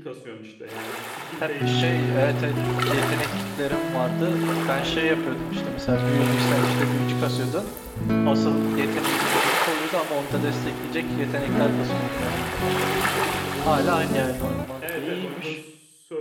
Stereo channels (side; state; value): both; identical; correlation 1.00